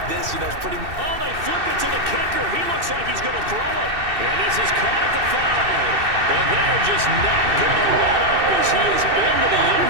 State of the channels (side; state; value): left; late; 2.6 ms